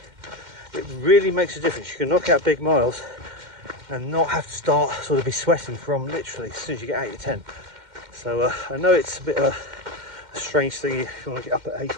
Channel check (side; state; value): left; late; 2.1 ms